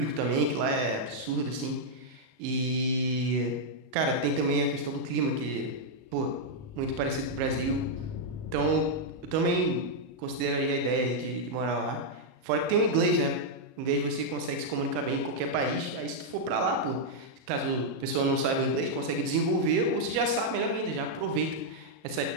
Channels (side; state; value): left; late; 38 ms